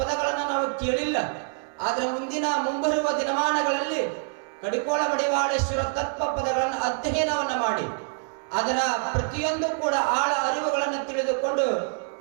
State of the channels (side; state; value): left; silent; 61 dB below the other